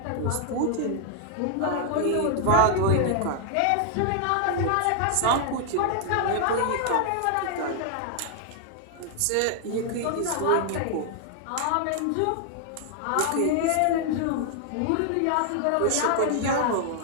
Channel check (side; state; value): both; different; correlation 0.00